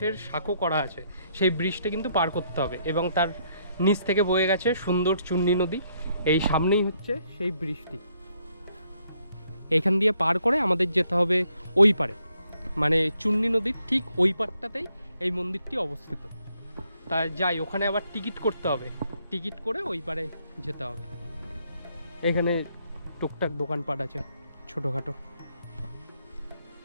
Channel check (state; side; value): inverted; both; correlation -0.72